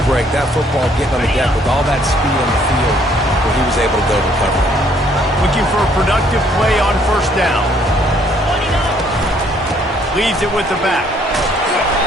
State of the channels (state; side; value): normal; both; correlation 0.64